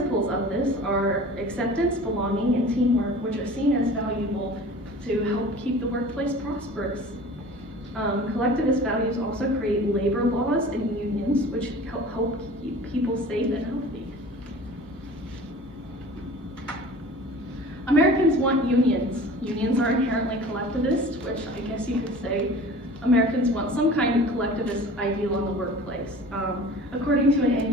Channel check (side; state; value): both; normal; correlation 0.41